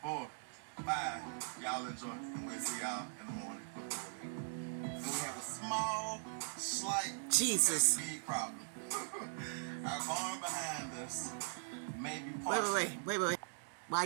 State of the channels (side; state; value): left; silent; digital silence